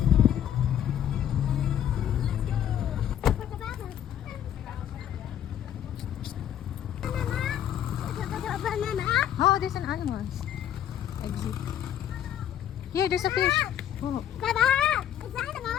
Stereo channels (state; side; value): quieter; right; 10.4 dB